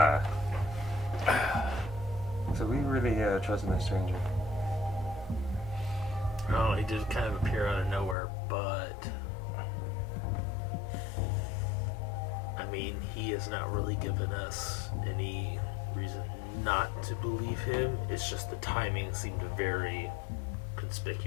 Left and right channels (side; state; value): right; drops out; at 8.2 s